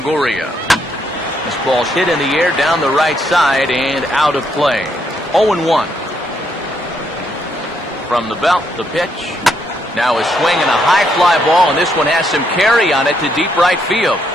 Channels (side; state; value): both; normal; correlation 0.75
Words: This ball's hit in the air down the right side and out of play. 0-1. From the belt, the pitch. Now a swing and a high fly ball, and this one has some carry on it to deep right field.